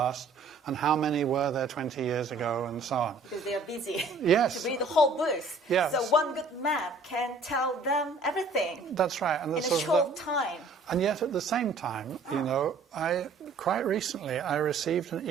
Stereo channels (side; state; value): left; quieter; 3.7 dB